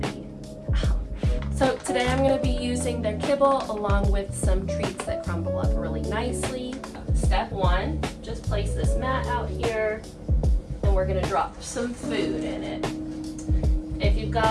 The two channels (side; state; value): both; identical; correlation 1.00